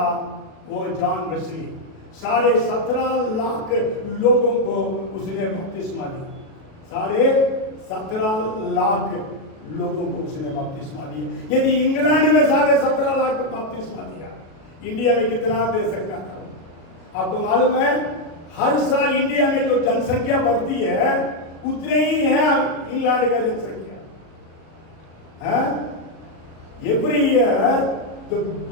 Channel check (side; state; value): right; late; 37 ms